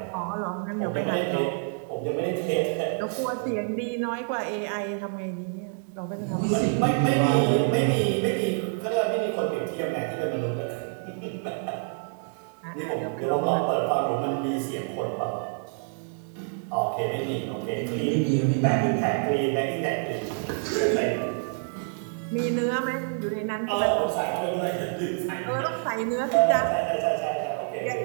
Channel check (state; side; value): silent; left; 60 dB below the other